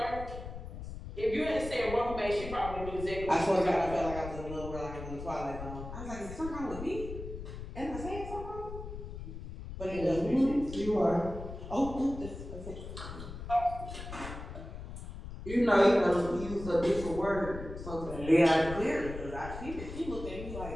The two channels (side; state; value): left; noise; rumble, 10 dB below the sound